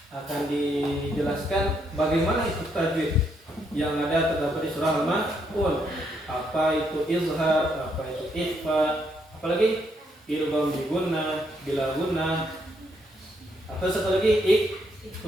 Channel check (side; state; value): both; normal; correlation 0.75